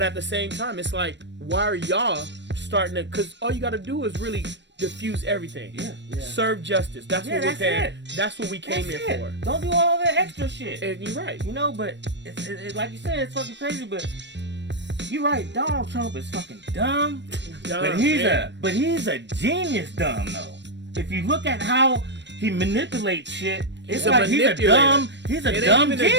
at the same time, it's like, why are y'all starting to? Because all you got to do is really diffuse everything. Yeah. Serve justice. That's what we're paying. That's what we came here for. Don't do all that extra shit. And you're right. You know, but it's like you said, it's fucking crazy. But you're right. Donald Trump is fucking dumb. But he's a genius dumb though. If you look at how he manipulates shit. It's like he's a dumb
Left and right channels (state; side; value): late; left; 0.52 ms